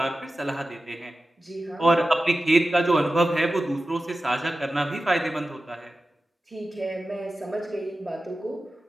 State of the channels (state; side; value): normal; both; correlation 0.94